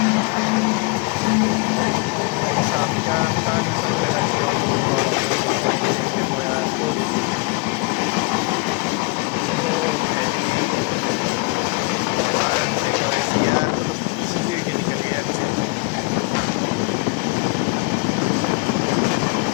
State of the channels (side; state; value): right; quieter; 27.9 dB